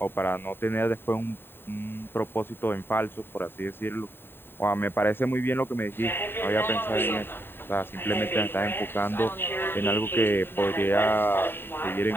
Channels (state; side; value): late; right; 0.11 ms